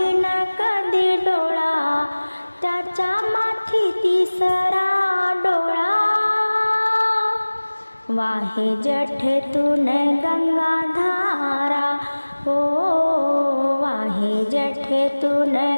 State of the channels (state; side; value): inverted; both; correlation -1.00